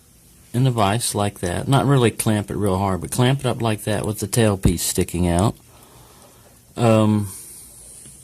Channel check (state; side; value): identical; both; correlation 1.00